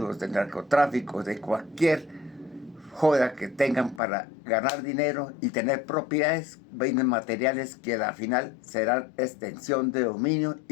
del narcotráfico, de cualquier joda que tengan para ganar dinero y tener propiedades, bienes materiales que al final serán extensión de dominio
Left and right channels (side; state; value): right; drops out; at 4.0 s